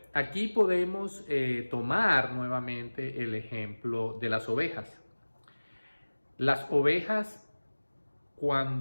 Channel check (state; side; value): inverted; both; correlation -1.00